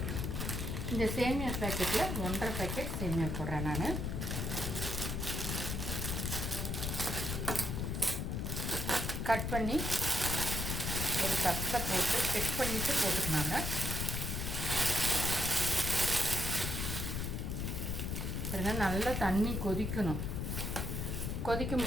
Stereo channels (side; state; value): left; noise; rumble, 1 dB below the sound